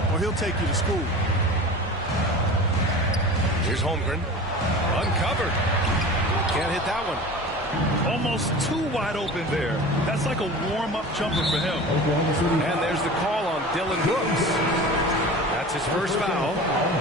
or he'll take you to school. Here's Holmgren. Uncovered. Can't hit that one. Almost too wide open there. That's like a warm-up jumper for him. And there's the call on Dylan Brooks. That's his first foul.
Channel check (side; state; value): both; normal; correlation 0.36